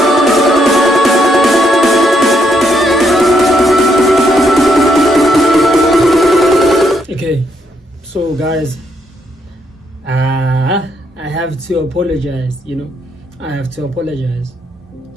So guys, I have to apologize, I have to apologize.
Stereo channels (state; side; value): normal; both; correlation 0.75